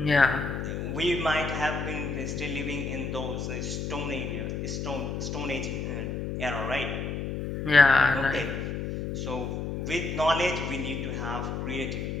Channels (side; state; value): left; noise; hum, 3 dB below the sound